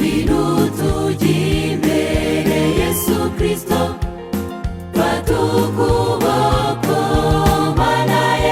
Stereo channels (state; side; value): identical; both; correlation 1.00